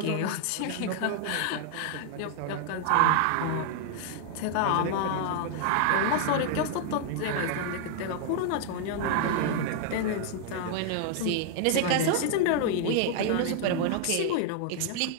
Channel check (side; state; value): both; different; correlation 0.00